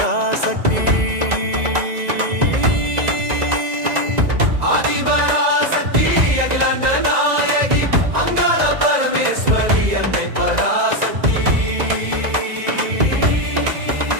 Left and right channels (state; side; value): late; left; 2.0 ms